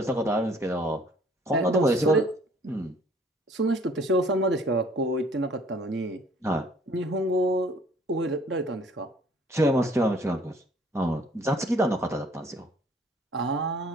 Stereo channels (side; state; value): both; normal; correlation 0.57